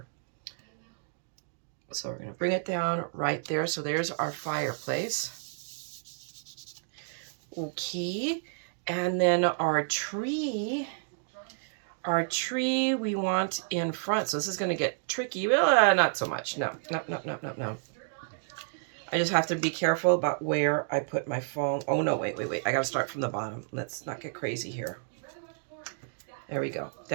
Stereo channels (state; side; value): silent; left; digital silence